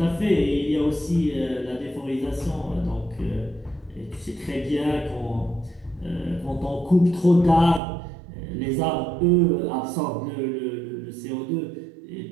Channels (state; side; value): drops out; left; at 7.8 s